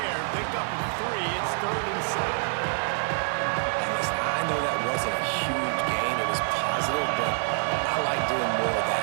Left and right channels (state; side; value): silent; left; 60 dB below the other